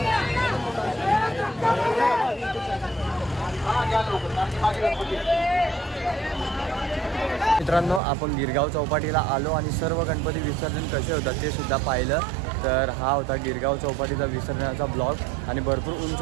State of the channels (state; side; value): drops out; left; at 8.0 s